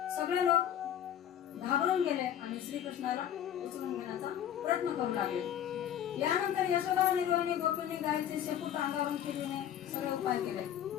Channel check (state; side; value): quieter; right; 10.4 dB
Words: सगळे लोक घाबरून गेले आणि श्रीकृष्णाला उचलून घेण्याचा प्रयत्न करू लागले. यानंतर यशोदा आणि रोहिणी गोपींनी गायीचे शेपूट अंगावरून फिरविणे सगळे उपाय केले.